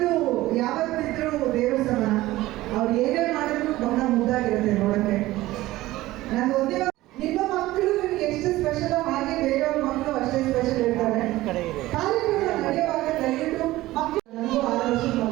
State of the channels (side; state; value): left; quieter; 17.2 dB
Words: ಯಾವತ್ತಿದ್ರೂ ದೇವರ ಸಮಾನ. ಅವ್ರು ಏನೇ ಮಾಡಿದ್ರು ಬಹಳ ಮುದ್ದಾಗಿರುತ್ತೆ ನೋಡೋಕ್ಕೆ. ನಾನು ಒಂದೇ ನಿಮ್ಮ ಮಕ್ಕಳು ನಿಮ್ಗೆ ಎಷ್ಟು ಸ್ಪೆಷಲ್ ಹಾಗೆ ಬೇರೆಯವ್ರ ಮಕ್ಕಳು ಅಷ್ಟೇ ಸ್ಪೆಷಲ್ ಇರ್ತಾರೆ. ಕಾರ್ಯಕ್ರಮ ನಡೆಯುವಾಗ ದಯವಿಟ್ಟು ಮಕ್ಕಳು ನನಗೂ 6 ವರ್ಷದ